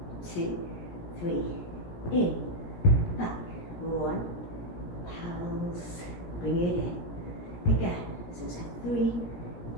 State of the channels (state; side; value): late; right; 17 ms